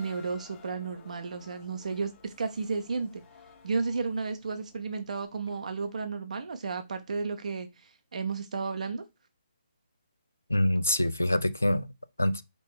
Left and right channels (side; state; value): both; inverted; correlation -0.85